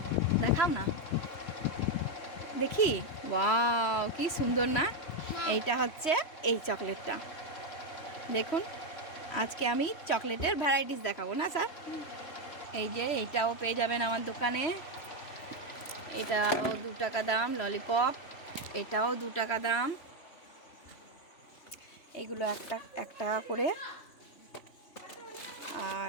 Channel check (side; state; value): right; late; 3.1 ms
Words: দেখাও না দেখি। ওয়াও, কি সুন্দর না? এইটা হচ্ছে এই চকলেটটা। দেখুন, আজকে আমি চকলেটের ভ্যারাইটিস দেখাবো না স্যার। এই যে এইটাও পেয়ে যাবেন আমার দোকানে। এটাও 2 টাকা দাম ললিপপ, এটাও 2 টাকা দাম। এইগুলো 1 টাকা করে,